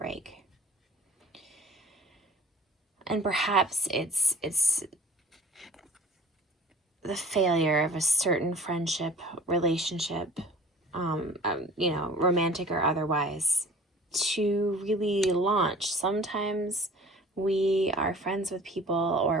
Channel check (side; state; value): both; normal; correlation 0.45